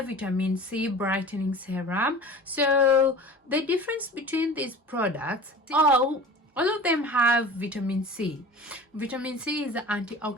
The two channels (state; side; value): normal; both; correlation 0.39